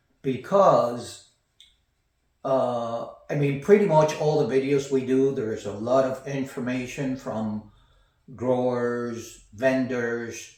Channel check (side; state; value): both; identical; correlation 1.00